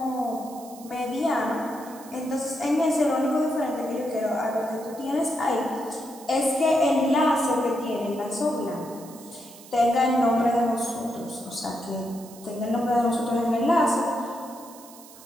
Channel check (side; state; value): right; noise; hiss, 20 dB below the sound